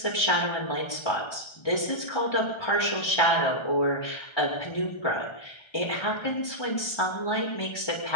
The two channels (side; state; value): right; late; 1.3 ms